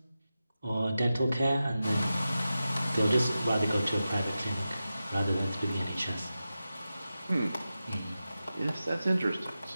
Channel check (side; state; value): both; inverted; correlation -0.93